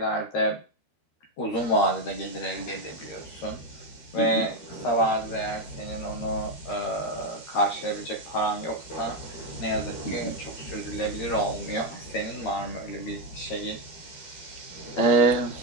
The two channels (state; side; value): late; right; 13 ms